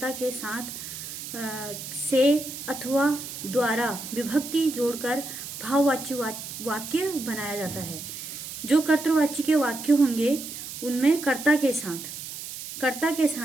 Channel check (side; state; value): right; noise; hiss, 9 dB below the sound